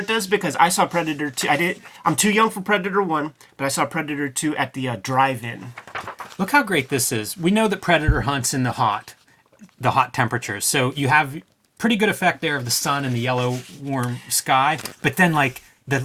does because I saw Predator 2. I'm too young for Predator 1, but I saw Predator 2 at the drive-in. Look how great this is. We know that Predator hunts in the hot temperatures. So you have pretty good effect there of the sun and the yellow warm sky. But then like the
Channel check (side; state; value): both; identical; correlation 1.00